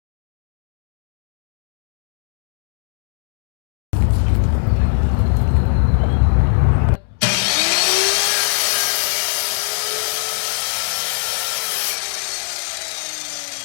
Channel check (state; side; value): silent; right; 64 dB below the other